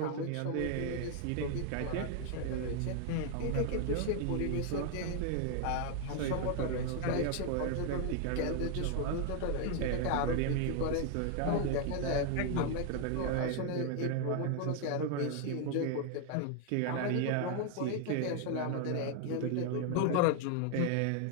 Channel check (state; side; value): different; both; correlation 0.00